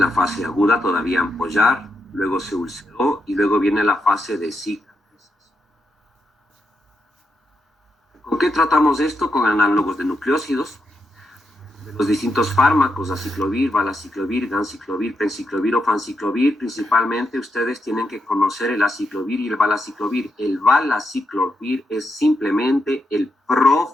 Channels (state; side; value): normal; both; correlation 0.83